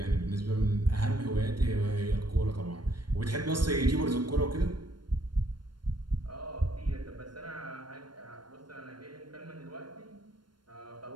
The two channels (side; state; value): left; late; 0.72 ms